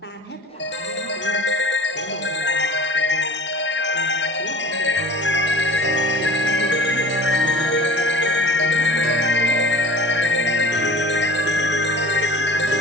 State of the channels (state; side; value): normal; both; correlation 0.42